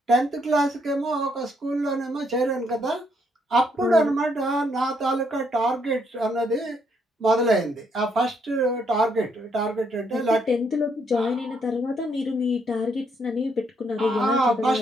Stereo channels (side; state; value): both; normal; correlation 0.73